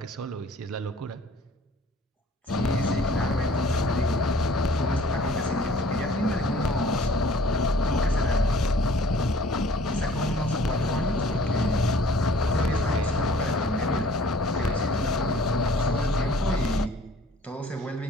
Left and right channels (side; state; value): both; normal; correlation 0.53